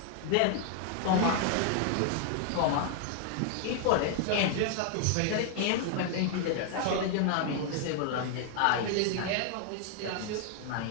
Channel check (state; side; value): different; both; correlation 0.00